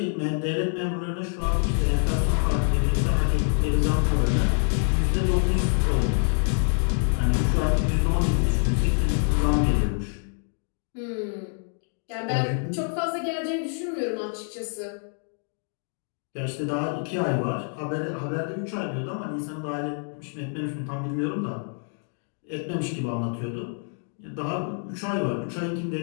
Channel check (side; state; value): right; silent; 55 dB below the other